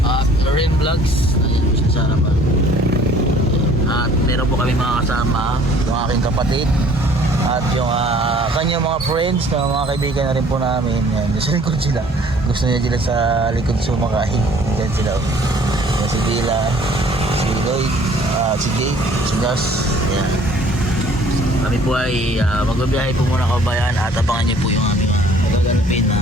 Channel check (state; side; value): normal; both; correlation 0.55